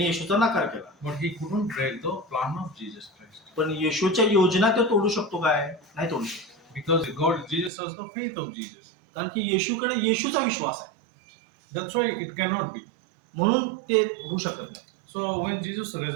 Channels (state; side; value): drops out; left; at 7.7 s